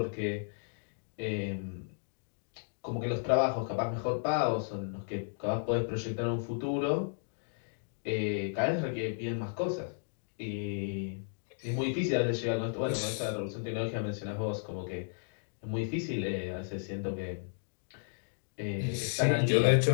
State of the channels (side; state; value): right; silent; digital silence